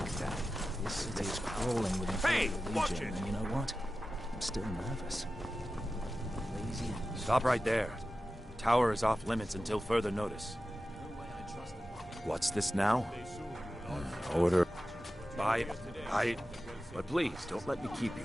that. This city is crawling with Imperial Legion, and you know what? I'm still nervous. Lazy. Stop right there. The tower is off limits until further notice. What's this now? Order. But please, don't let me keep you.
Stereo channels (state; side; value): normal; both; correlation 0.94